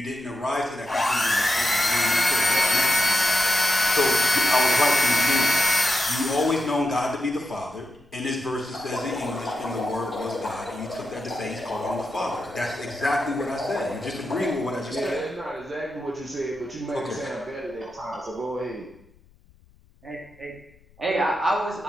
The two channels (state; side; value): noise; left; rumble, 28 dB below the sound